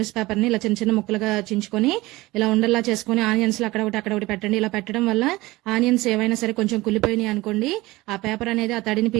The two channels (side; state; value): left; quieter; 20.0 dB